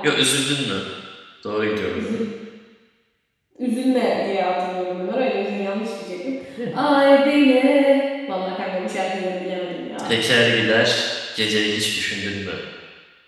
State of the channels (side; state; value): both; identical; correlation 1.00